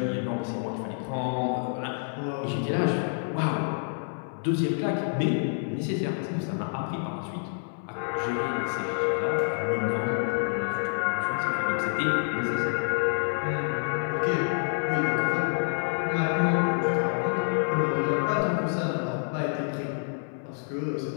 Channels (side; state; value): right; silent; 59 dB below the other